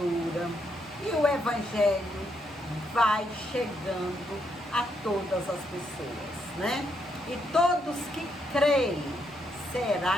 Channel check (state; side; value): normal; both; correlation 0.77